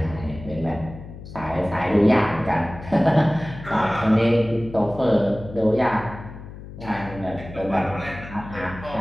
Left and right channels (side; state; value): left; noise; hum, 14 dB below the sound